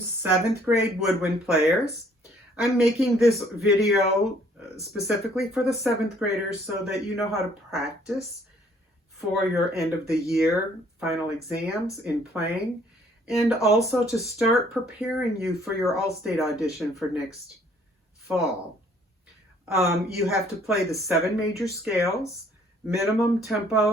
grade woodwind players. I'm making this video specifically for the 7th graders so that you know how to practice for your end of the year final exams in playing, and also to start preparing you for your All-State audition for next fall. You have to play the 7 major scales. Minimum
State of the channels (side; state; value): both; normal; correlation 0.61